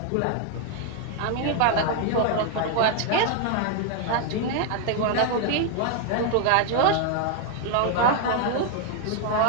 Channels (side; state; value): both; different; correlation 0.00